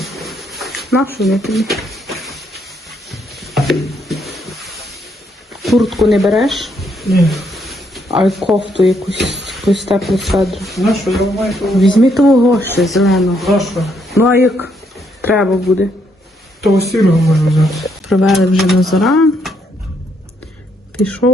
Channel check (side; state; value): both; normal; correlation 0.74